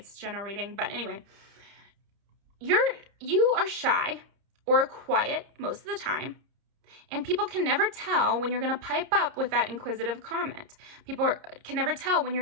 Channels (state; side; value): late; left; 30 ms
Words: general reading. But anyway, you are shy or quiet most of the time, and people can never tell when you're going to pipe up with that inquisitive comment. People can never tell when